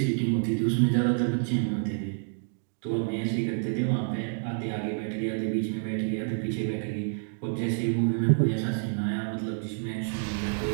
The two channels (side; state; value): left; silent; digital silence